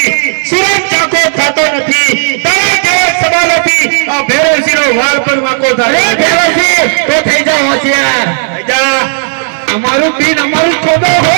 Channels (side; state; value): left; silent; digital silence